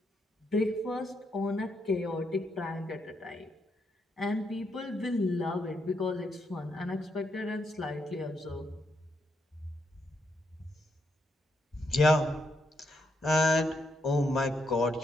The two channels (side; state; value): both; normal; correlation 0.79